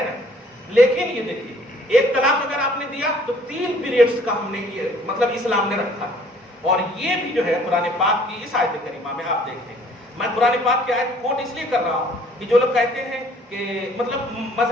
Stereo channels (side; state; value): both; normal; correlation 0.57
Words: نا۔ لیکن یہ دیکھیے، ایک طلاق اگر آپ نے دیا تو 3 پیریڈز کا ہم نے یہ مطلب اسلام نے رکھا، اور یہ بھی جو ہے قرآن پاک کی اس آیت کریمہ میں آپ دیکھیں، میں قرآن پاک کی آیت کوٹ اس لیے کر رہا ہوں کہ جو لوگ کہتے ہیں کہ مطلب